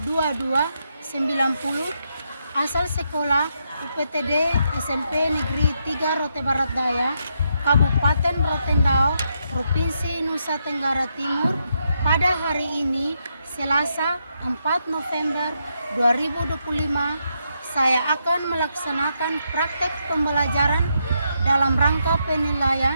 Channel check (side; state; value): both; inverted; correlation -0.80